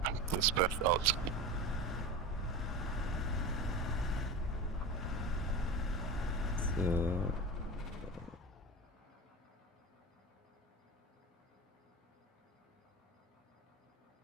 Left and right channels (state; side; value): normal; both; correlation 0.28